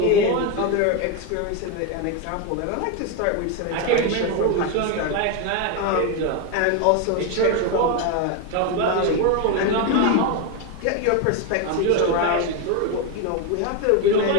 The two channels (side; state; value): both; different; correlation 0.02